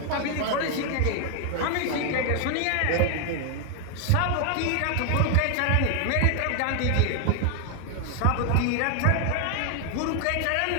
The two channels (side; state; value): both; different; correlation 0.00